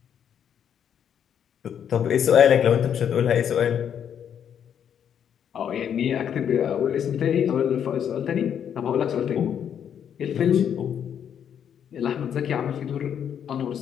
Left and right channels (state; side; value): quieter; right; 8.7 dB